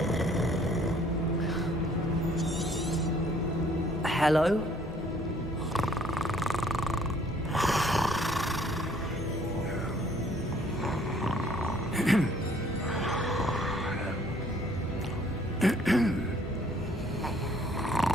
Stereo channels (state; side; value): normal; both; correlation 0.60